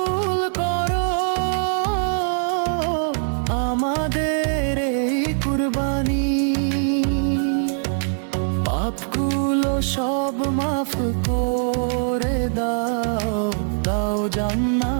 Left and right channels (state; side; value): silent; left; digital silence